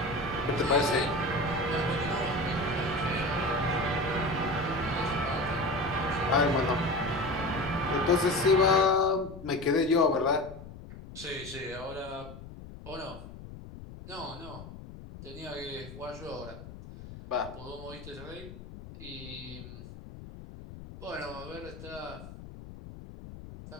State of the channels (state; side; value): noise; left; rumble, 14 dB below the sound